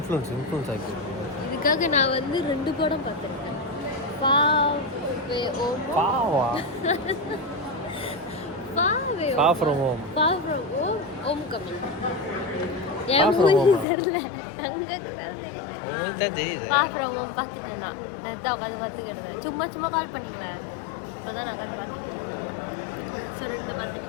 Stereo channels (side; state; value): right; drops out; at 13.9 s